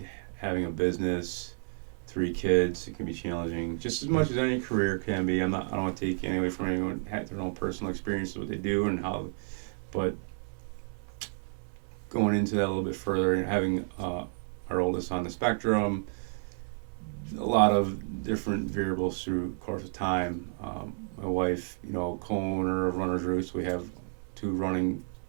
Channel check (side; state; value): left; silent; 57 dB below the other